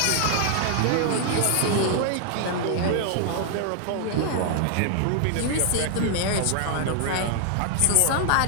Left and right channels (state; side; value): different; both; correlation 0.00